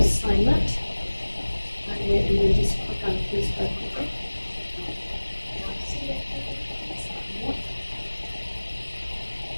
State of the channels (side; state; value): both; inverted; correlation -1.00